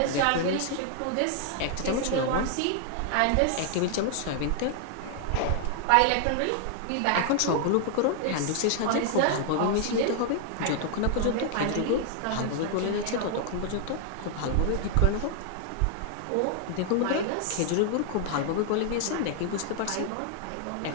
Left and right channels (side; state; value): both; different; correlation 0.00